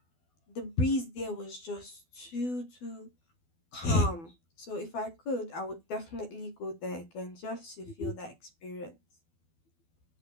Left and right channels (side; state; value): right; late; 12 ms